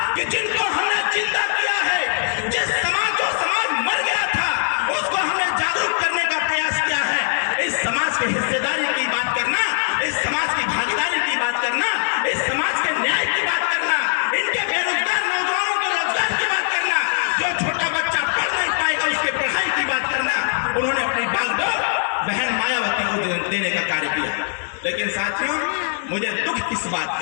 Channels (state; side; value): silent; right; 65 dB below the other